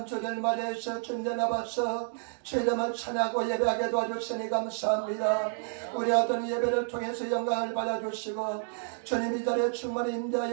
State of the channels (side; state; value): left; silent; digital silence